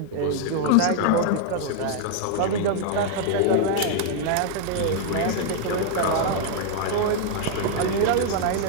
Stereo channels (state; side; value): different; both; correlation 0.00